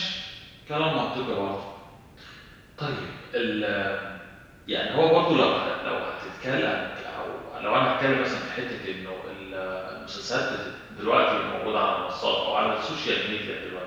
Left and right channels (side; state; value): both; identical; correlation 1.00